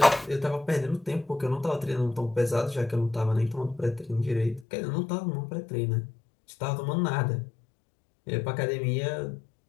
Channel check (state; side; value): drops out; right; at 4.7 s